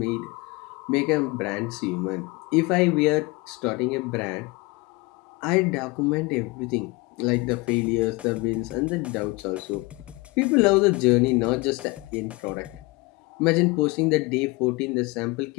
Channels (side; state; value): right; quieter; 24.5 dB